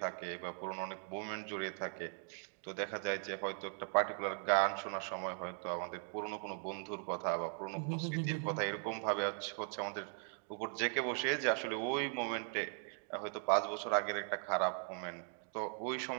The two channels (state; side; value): silent; left; 52 dB below the other